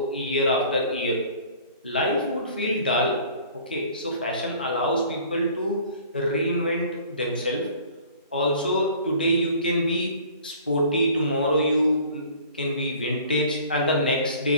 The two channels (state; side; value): inverted; both; correlation -0.49